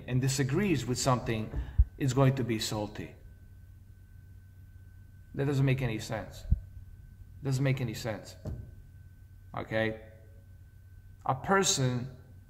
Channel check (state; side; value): identical; both; correlation 1.00